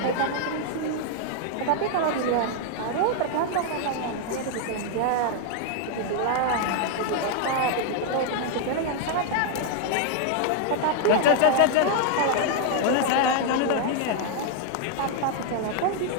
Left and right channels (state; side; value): different; both; correlation 0.00